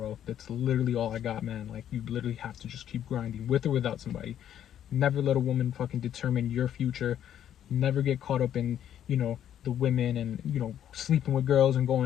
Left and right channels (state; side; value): quieter; right; 10.4 dB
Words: That's literally all I got, man. Like, you literally have to just keep grinding with or without somebody. Never let a woman fucking determine your future. Never get caught up in, the women and, sleeping with girls and